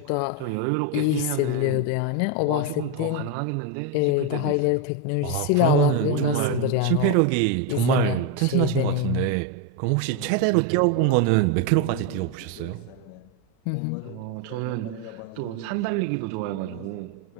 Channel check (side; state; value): both; different; correlation 0.03